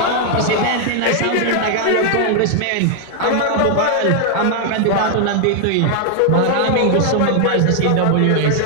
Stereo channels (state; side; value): different; both; correlation 0.00